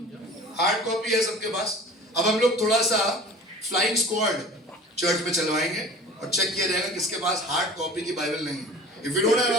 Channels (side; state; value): both; normal; correlation 0.42